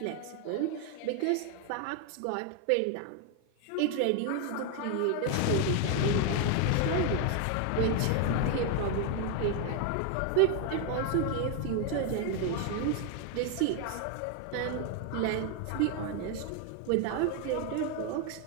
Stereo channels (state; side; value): different; both; correlation 0.01